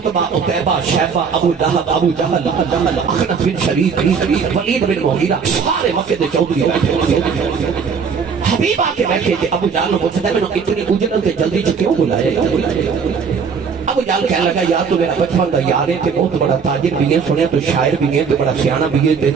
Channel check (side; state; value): left; quieter; 6.0 dB